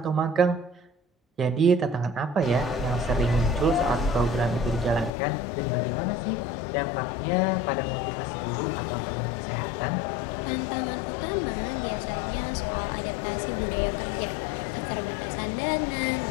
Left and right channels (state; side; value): drops out; right; at 5.1 s